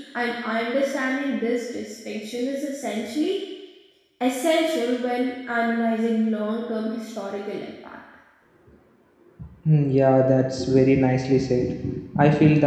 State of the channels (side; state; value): both; identical; correlation 1.00